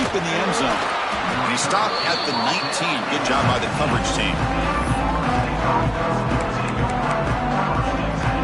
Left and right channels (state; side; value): identical; both; correlation 1.00